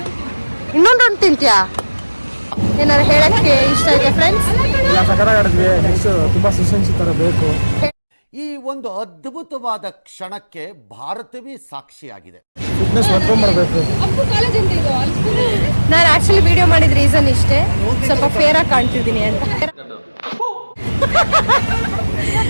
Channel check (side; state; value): both; inverted; correlation -1.00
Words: ಇನ್ನೊಂದು ತಿಂತ್ಯಾ? ಏನಾರು ಹೇಳಕ್ಕೆ ಇಷ್ಟ ಇದೆ ಫ್ರೆಂಡ್ಸ್? ಇಲ್ಲ, ಸಕರಾಗಿ ಆಡಿದ್ವಿ. ನೆಕ್ಸ್ಟ್ ತುಂಬಾ ಸೆಷನ್ಸ್ ತರ ಬೇಕು. ಈ ಒಂದು ಅದ್ಭುತವಾದ ಕ್ಷಣಕ್ಕೆ ಭಾರತವೇ ಸಾಕ್ಷಿಯಾಗಿದೆ. ಫಿಟ್ನೆಸ್ ಮಾಡ್ಕೊಂಡ್ಬರ್ಬೇಕು. ಕಾಲೇಜ್ ಅಂತ ಇದು ನಾನು ಆಕ್ಚುಲಿ ವಿಡಿಯೋ ಮಾಡಿದ ರೀಸನ್ ಇಷ್ಟೇ, ಸ್ವಲ್ಪ ಫೇರ್ ಆಗಿ ಕಾಣ್ತಿದ್ದೀನಿ ಅಂತ.